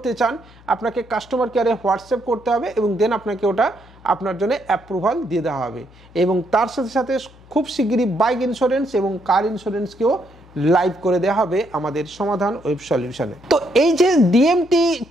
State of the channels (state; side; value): noise; left; hum, 24 dB below the sound